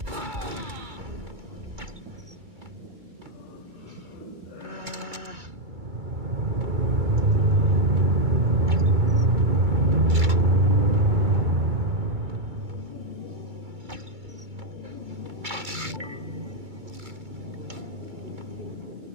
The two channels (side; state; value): left; late; 2.3 ms